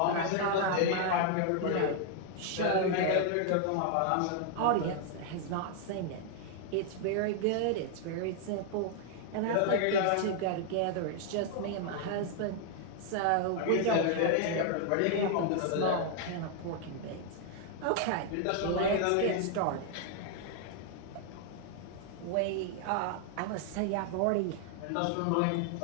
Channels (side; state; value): both; different; correlation 0.00